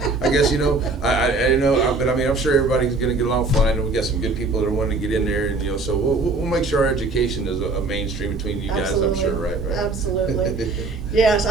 I guess, you know, I know, but I mean, I'm sure everybody's going to get along fine, and we got some good people that are wanting to get in there, and, you know, so we'll make sure our education is a mainstream between you guys. Absolutely. I'm sure, right? Absolutely. Yes,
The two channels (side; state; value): left; quieter; 3.5 dB